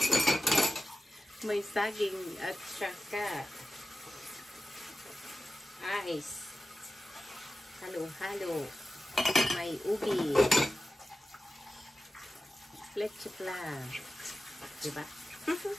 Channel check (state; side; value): normal; both; correlation 0.93